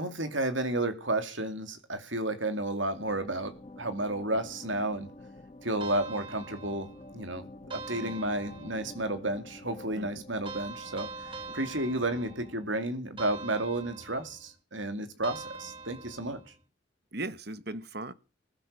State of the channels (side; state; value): both; normal; correlation -0.14